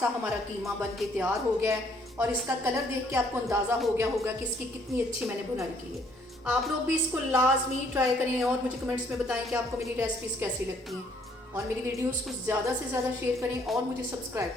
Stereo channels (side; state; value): both; normal; correlation 0.64